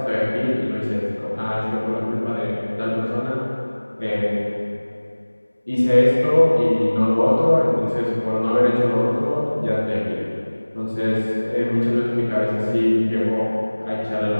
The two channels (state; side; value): inverted; both; correlation -1.00